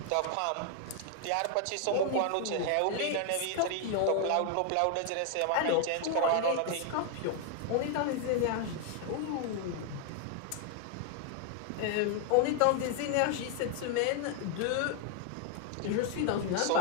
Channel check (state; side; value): different; both; correlation 0.00